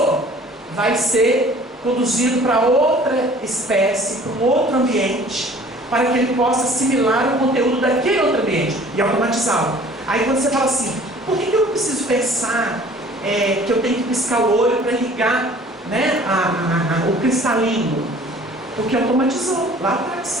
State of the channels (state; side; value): normal; both; correlation 0.50